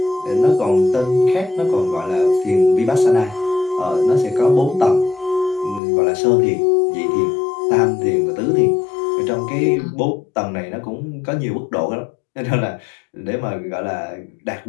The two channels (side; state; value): right; drops out; at 5.8 s